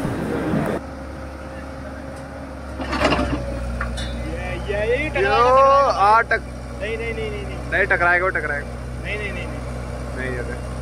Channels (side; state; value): both; identical; correlation 1.00